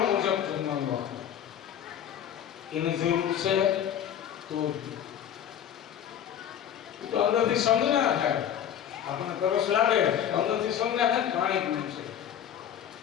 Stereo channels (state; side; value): quieter; right; 9.7 dB